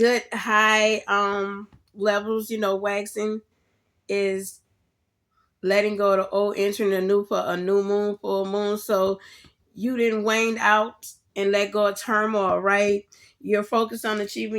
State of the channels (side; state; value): both; identical; correlation 1.00